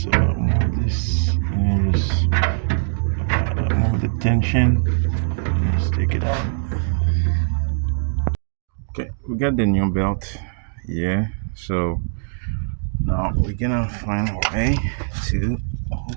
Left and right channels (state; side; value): silent; left; digital silence